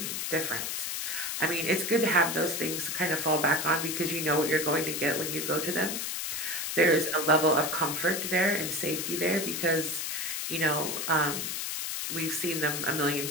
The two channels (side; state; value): left; noise; hiss, 3 dB below the sound